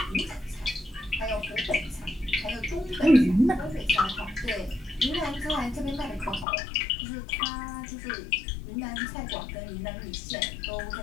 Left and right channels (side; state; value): right; drops out; at 6.5 s